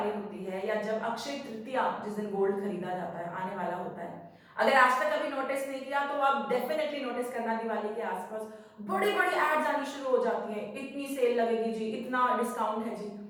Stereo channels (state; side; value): identical; both; correlation 1.00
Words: होती है या जब अक्षय तृतीया, जिस दिन गोल्ड खरीदा जाता है, आने वाला होता है, अगर आज तक कभी नोटिस नहीं किया तो आप डेफिनेटली नोटिस करना, दिवाली के आसपास बड़ी बड़ी एड्स आनी शुरू हो जाती हैं, इतनी सेल लगेगी जी, इतना डिस्काउंट है जी।